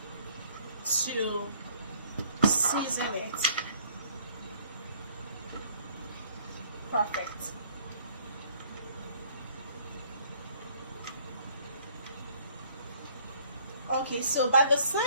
to season it. Perfect. Okay, so by the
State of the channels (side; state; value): both; inverted; correlation -0.60